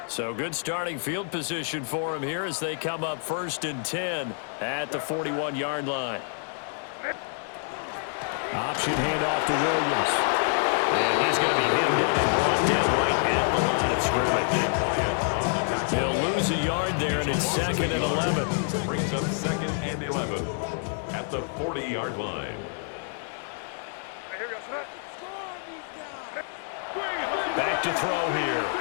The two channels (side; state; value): right; silent; 60 dB below the other